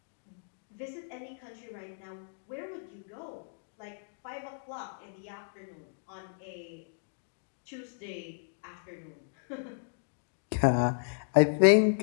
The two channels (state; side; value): silent; right; digital silence